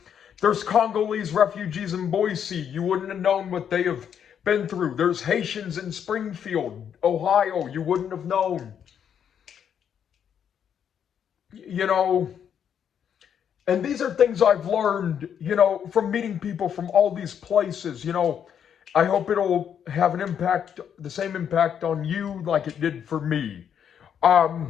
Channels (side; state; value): right; quieter; 8.4 dB